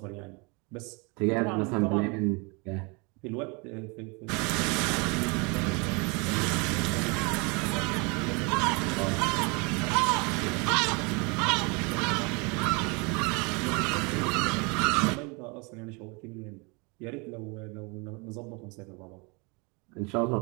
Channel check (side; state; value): left; quieter; 30.4 dB